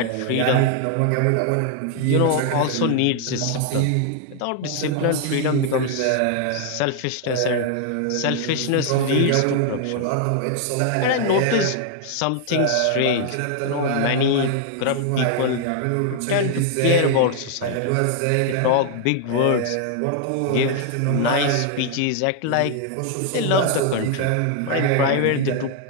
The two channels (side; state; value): both; different; correlation 0.00